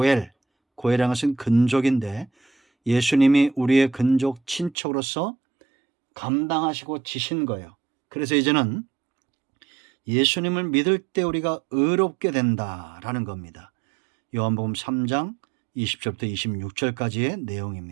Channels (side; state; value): left; drops out; at 4.8 s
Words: 것은 근족인데, 예수님이 우리의 근족 친척으로서 감당하시고 지신 거예요. 그래서 이제는 예수님을 믿을 때 우리가 의롭게 된다라는 겁니다. 요한복음 3장 20절부터 26절까지의